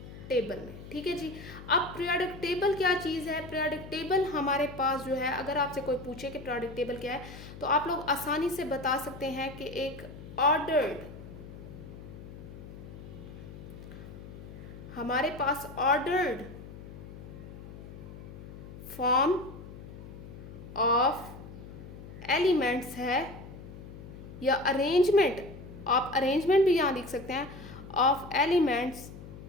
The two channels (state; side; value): noise; left; hum, 14 dB below the sound